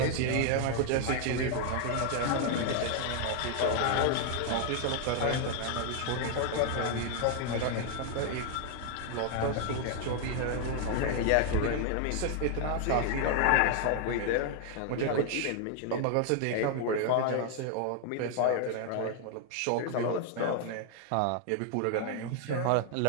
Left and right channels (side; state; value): both; different; correlation 0.00